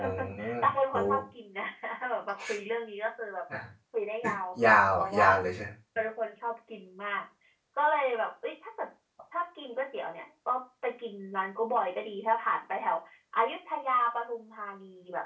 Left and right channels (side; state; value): both; identical; correlation 1.00